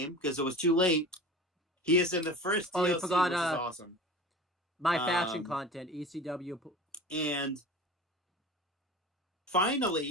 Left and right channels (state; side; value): normal; both; correlation 0.36